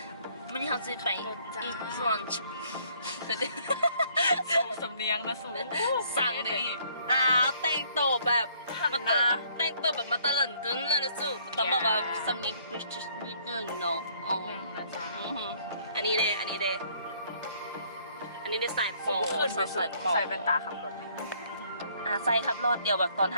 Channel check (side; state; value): both; inverted; correlation -0.63